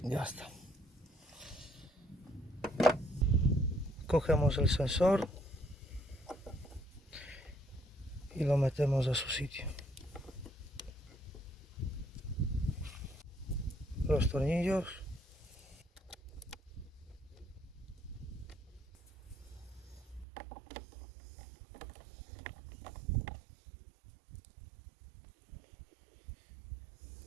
Ya está. Cogemos el sensor y lo metemos a su sitio. Los tornillos.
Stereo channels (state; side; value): drops out; left; at 20.2 s